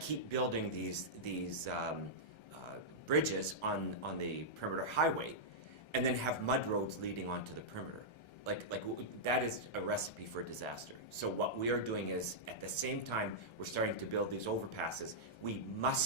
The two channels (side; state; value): right; late; 1.3 ms